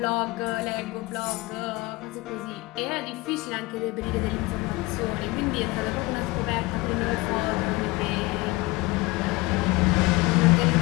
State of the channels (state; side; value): quieter; right; 22.5 dB